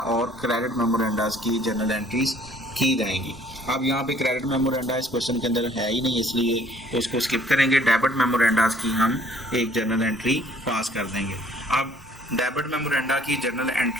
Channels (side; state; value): both; normal; correlation 0.59